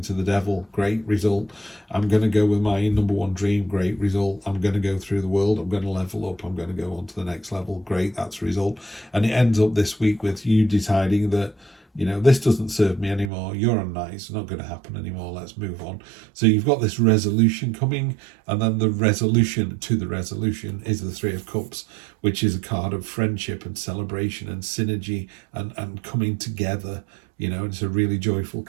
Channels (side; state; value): left; drops out; at 13.3 s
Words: to the devil. Great result. I'm going to go with my number one dream. Great result. I'm going to go through the world. I'm going to level up. I'm going to go on to the next level. Great. That's a result. And it ends up this week with you deciding that, you know, this doesn't serve me anymore. You're unnice. It's not going to happen anymore. Let's move on. So you've got this resolution coming, and then the resolution to the resolution is the Three of Cups, which is a card of friendship and celebration and synergy and coming together. You know, it's a really joyful